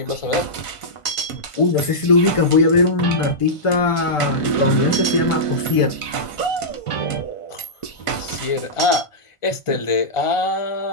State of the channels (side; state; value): right; late; 1.5 ms